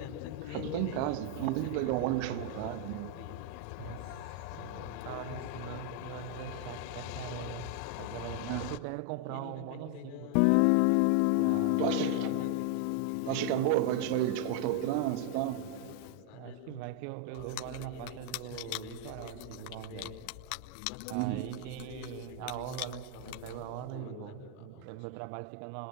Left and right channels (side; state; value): both; different; correlation 0.00